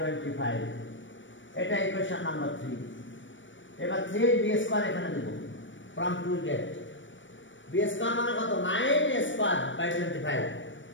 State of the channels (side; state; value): right; late; 0.56 ms